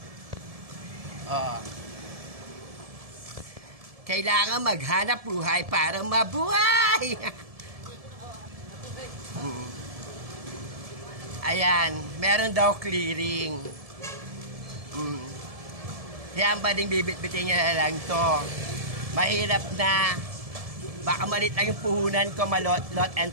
Oh. Kailangan maghanap buhay para mabuhay. Ayan, meron daw clearing. Yan ba ding bibit-bitin niya lang to. Mahirap na. Baka malit lang yung puhunan ko, malot, lot and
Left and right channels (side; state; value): left; late; 1.7 ms